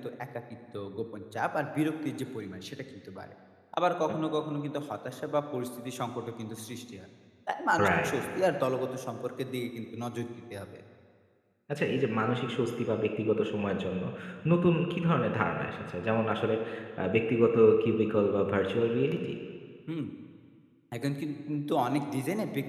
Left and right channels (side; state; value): both; identical; correlation 1.00